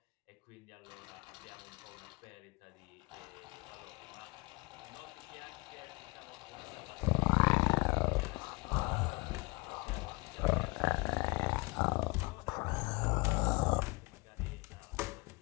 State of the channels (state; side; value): quieter; right; 27.5 dB